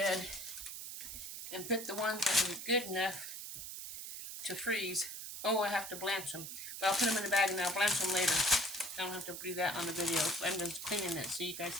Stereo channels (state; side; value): noise; right; hiss, 8 dB below the sound